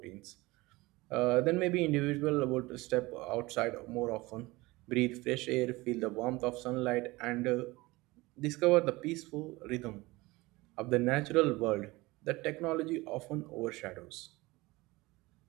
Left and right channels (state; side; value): quieter; left; 21.4 dB